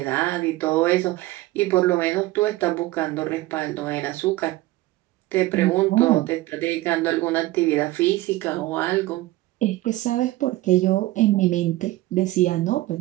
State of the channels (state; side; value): quieter; left; 17.9 dB